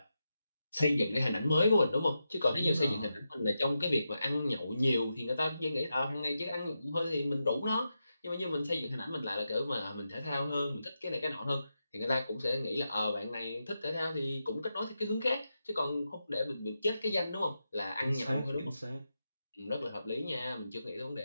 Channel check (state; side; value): inverted; both; correlation -0.88